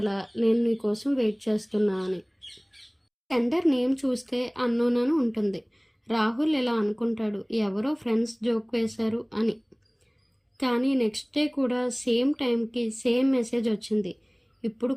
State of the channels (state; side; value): identical; both; correlation 1.00